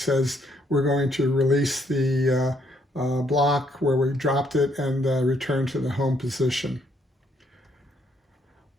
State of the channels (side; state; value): both; normal; correlation 0.71